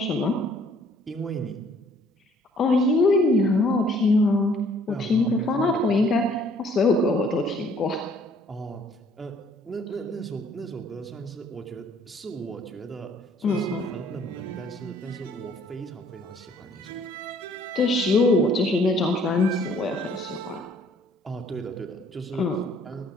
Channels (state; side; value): normal; both; correlation 0.60